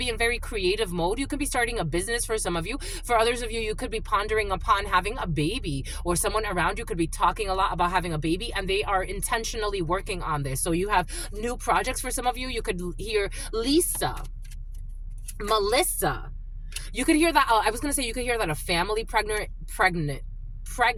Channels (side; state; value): both; identical; correlation 1.00